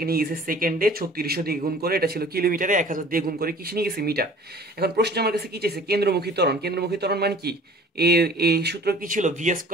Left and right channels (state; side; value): normal; both; correlation 0.48